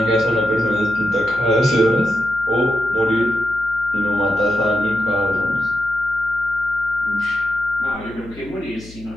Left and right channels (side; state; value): left; noise; hum, 19 dB below the sound